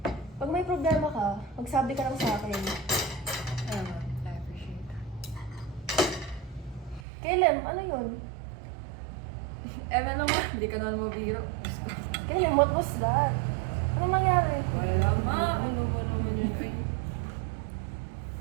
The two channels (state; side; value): drops out; left; at 7.0 s